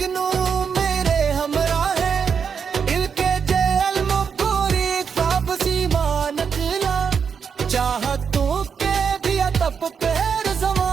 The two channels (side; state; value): left; quieter; 6.5 dB